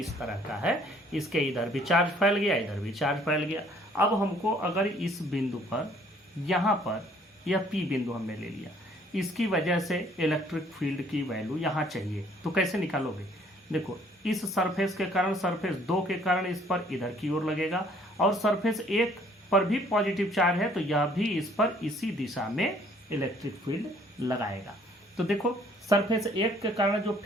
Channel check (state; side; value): normal; both; correlation 0.60